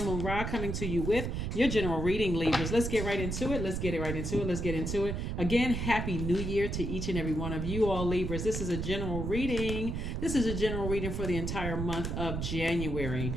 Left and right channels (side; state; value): right; noise; rumble, 3 dB below the sound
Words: Ra coming to you with your general reading, Libras. Let's get right into it. Let's get into it. Again, Happy New Year to each and every one of you all, Libras. This is a general reading. This is a general reading for the entire month of January.